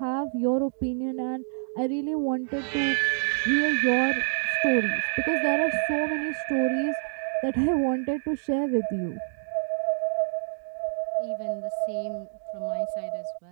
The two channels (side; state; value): left; silent; digital silence